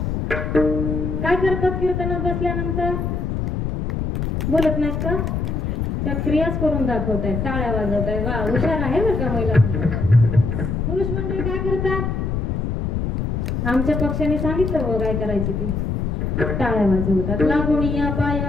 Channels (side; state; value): left; noise; rumble, 1 dB below the sound